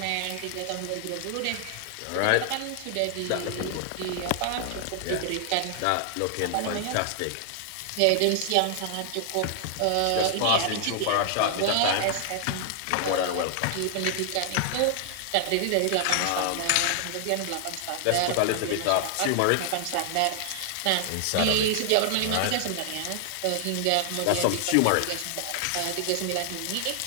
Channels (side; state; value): both; different; correlation 0.00